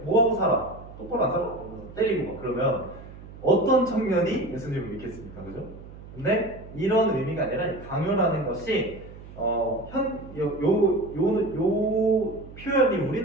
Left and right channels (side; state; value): right; noise; hum, 16 dB below the sound